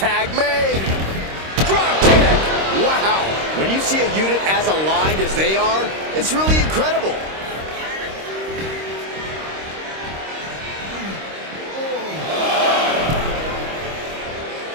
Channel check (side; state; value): left; late; 26 ms